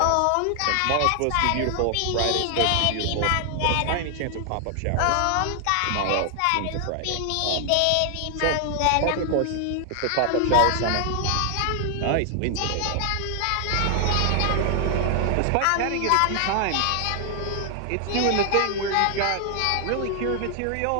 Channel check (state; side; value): different; both; correlation 0.00